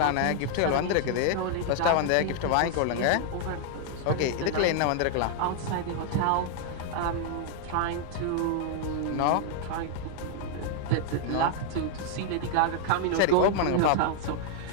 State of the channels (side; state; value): both; different; correlation 0.00